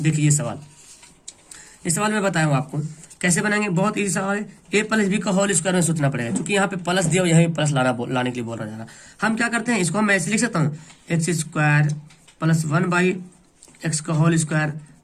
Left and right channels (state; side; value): identical; both; correlation 1.00